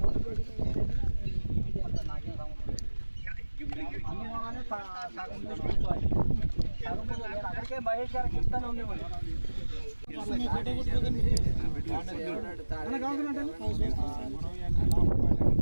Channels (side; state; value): both; inverted; correlation -1.00